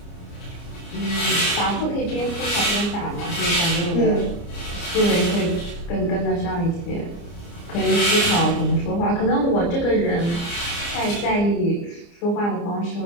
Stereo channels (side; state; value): right; late; 29 ms